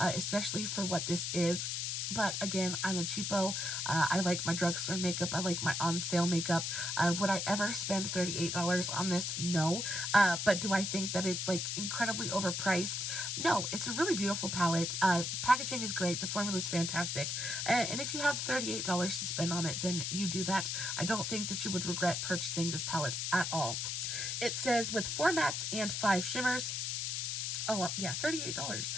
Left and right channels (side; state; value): left; noise; hiss, 1 dB below the sound